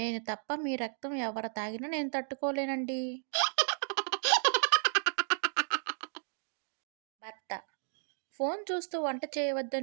తప్ప మీ రక్తం ఎవరు తాగినా నేను తట్టుకోలేనండి. భర్త: ఫోన్ చూస్తూ వంట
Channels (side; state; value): left; silent; digital silence